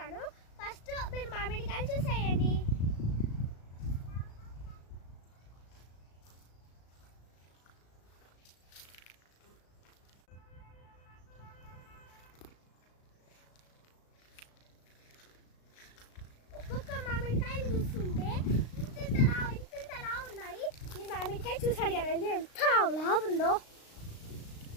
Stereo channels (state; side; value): late; right; 36 ms